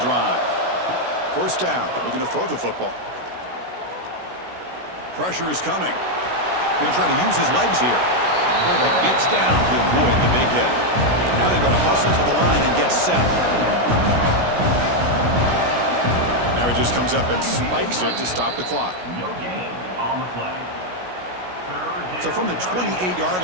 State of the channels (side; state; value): left; late; 16 ms